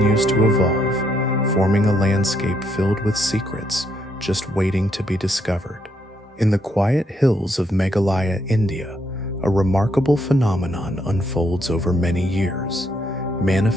to evolve, forming a landscape filled with secrets just waiting to be discovered. In the quiet hills of Meghalaya, India, a remarkable phenomenon unfolds over many years,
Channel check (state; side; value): normal; both; correlation 0.74